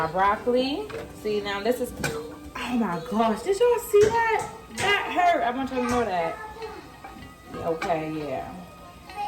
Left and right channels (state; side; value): identical; both; correlation 1.00